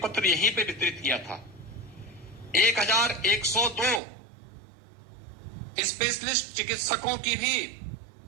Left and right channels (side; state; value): left; drops out; at 4.0 s